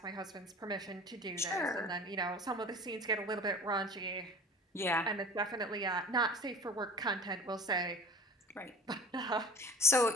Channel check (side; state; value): both; normal; correlation 0.40